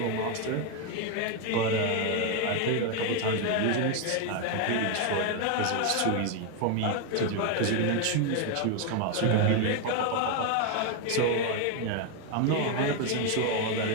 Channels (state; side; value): different; both; correlation 0.01